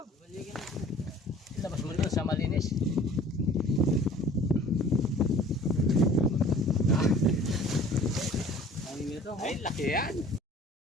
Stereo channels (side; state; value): both; normal; correlation 0.48